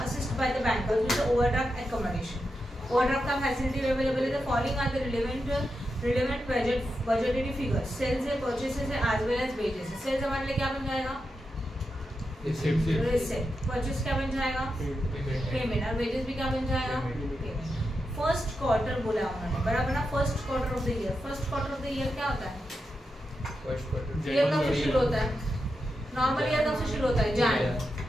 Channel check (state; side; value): normal; both; correlation 0.88